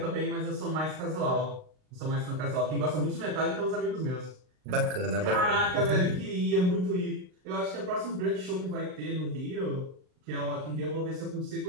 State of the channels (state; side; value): late; left; 39 ms